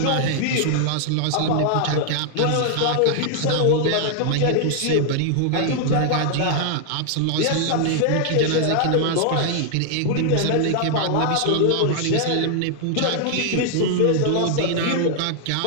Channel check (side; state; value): both; different; correlation 0.00